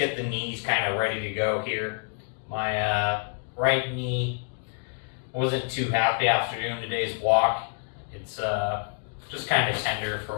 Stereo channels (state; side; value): silent; right; 58 dB below the other